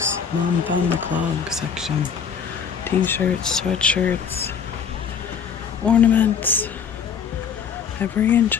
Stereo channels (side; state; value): right; quieter; 6.9 dB